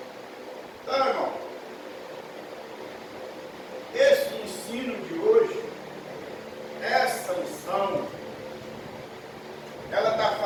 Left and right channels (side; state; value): both; identical; correlation 1.00